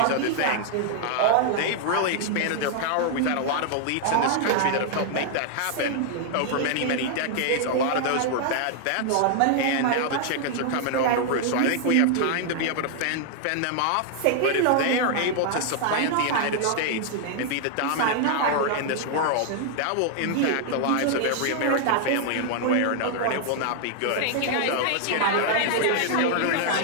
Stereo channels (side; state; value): both; different; correlation 0.00